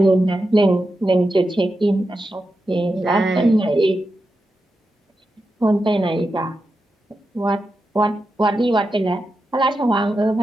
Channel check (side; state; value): both; normal; correlation 0.89